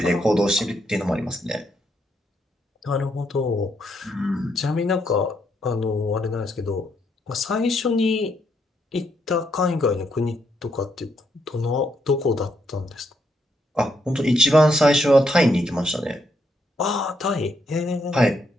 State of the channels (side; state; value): both; normal; correlation 0.77